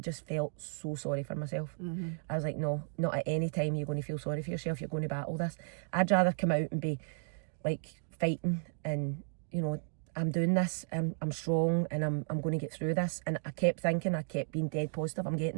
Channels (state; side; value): silent; left; digital silence